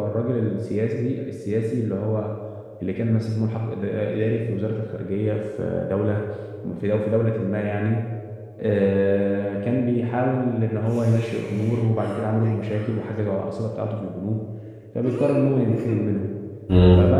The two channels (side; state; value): both; identical; correlation 1.00